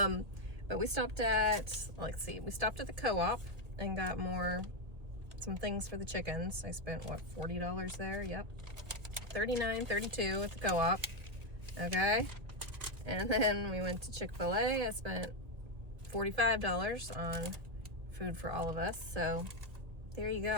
we stopped at, we stopped at the co-op and got some things for the chickens. I spent, what, $40 there? Yep. $39, $32 at the co-op. Okay. And then we went to Chick-fil-A. I spent $45 on food for all of us. So there you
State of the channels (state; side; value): late; left; 1.9 ms